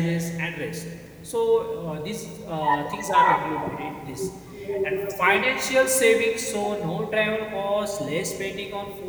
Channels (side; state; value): both; identical; correlation 1.00